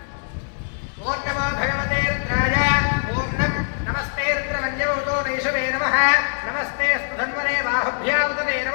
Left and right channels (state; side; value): silent; right; 64 dB below the other